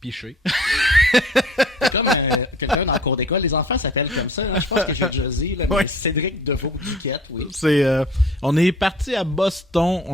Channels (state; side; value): normal; both; correlation 0.50